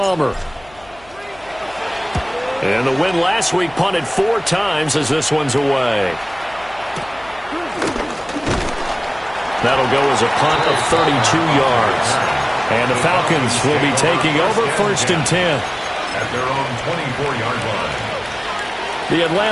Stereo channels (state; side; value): noise; left; hum, 26 dB below the sound